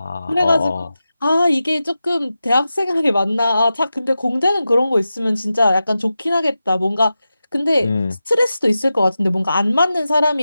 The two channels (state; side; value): inverted; both; correlation -0.92